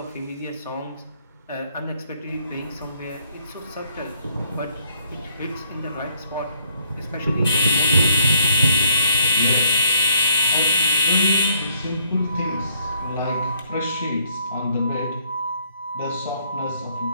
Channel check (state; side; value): inverted; both; correlation -0.67